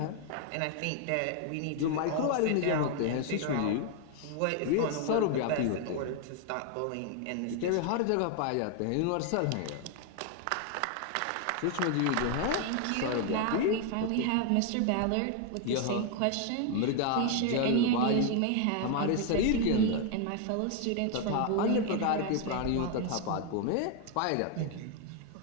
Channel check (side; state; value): both; different; correlation 0.00